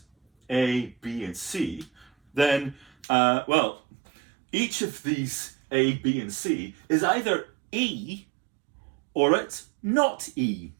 A, B, and C, then, each of these A, B, and C is either E or it's not E.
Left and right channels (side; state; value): left; drops out; at 2.9 s